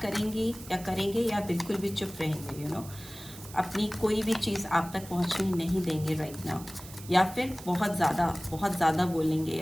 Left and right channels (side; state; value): right; noise; hiss, 16 dB below the sound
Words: करेंगी या करेंगे, या बिल्कुल भी चुप रहेंगे, यू नो, अपनी कोई भी चीज़ आप तक पहुंचने नहीं देंगे राइट नाउ, या फिर बहुत ज़्यादा बोलेंगे